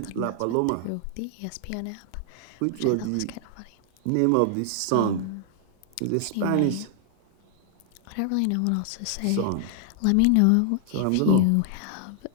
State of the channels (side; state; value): both; different; correlation 0.00